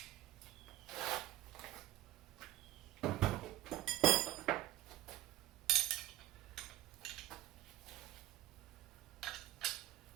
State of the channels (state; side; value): quieter; left; 15.8 dB